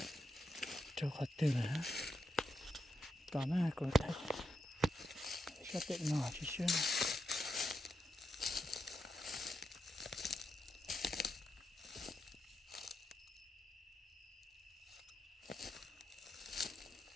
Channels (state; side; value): normal; both; correlation 0.85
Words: 就开的了。当然，个太，晓得哪去选？